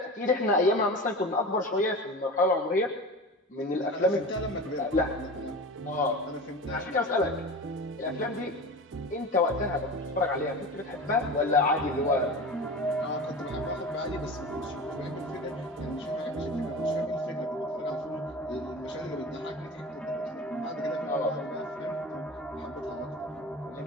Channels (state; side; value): normal; both; correlation 0.32